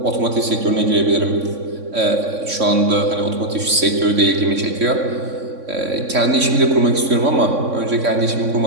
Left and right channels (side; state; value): left; late; 3.6 ms